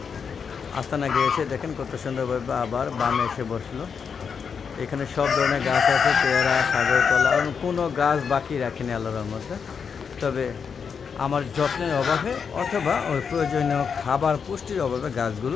আস্তানা গিয়েছে, দেখেন কত সুন্দরভাবে আবার বামে এসে বসলো। এখানে সব ধরনের গাছ আছে, পেয়ারা, সাগর কলা, কোনো গাছ বাকি রাখিনি আল্লাহর মধ্যে। তবে আমার যত্নের অভাবে অথবা ওই প্রয়োজনীয় খাবার পুষ্টির অভাবে গাছগুলো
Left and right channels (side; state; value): right; quieter; 6.3 dB